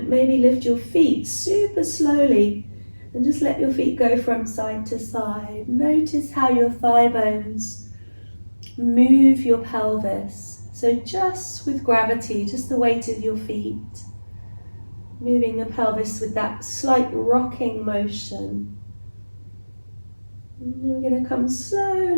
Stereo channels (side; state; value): both; inverted; correlation -1.00